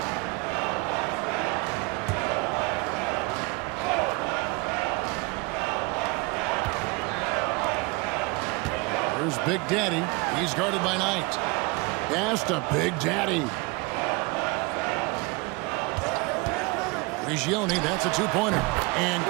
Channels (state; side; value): quieter; left; 26.8 dB